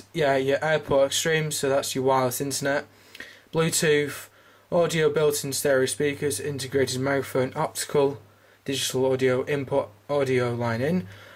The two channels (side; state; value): both; identical; correlation 1.00